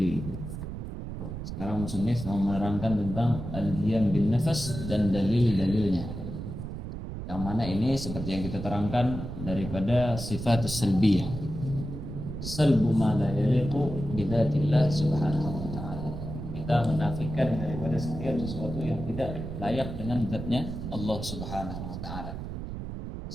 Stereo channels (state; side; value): noise; right; rumble, 7 dB below the sound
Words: Sekarang musannif mau menerangkan tentang al-qiyam bin nafas dan dalil-dalilnya. Yang mana ini seperti yang kita terangkan daripada sifat salbiyah. Salbu ma la yaliqu bi dzatillah subhanahu wa ta'ala. Kita menafikan daripada setiap sesuatu yang tidak layak dengan zatnya Allah subhanahu wa ta'ala.